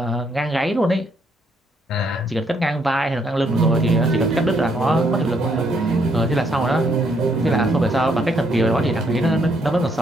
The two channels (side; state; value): both; normal; correlation 0.72